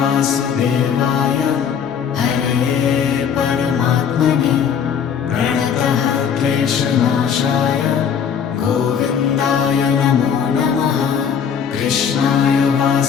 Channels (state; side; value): quieter; right; 7.5 dB